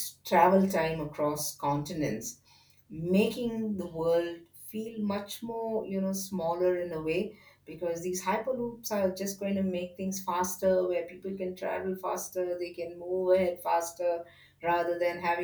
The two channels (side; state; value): both; identical; correlation 1.00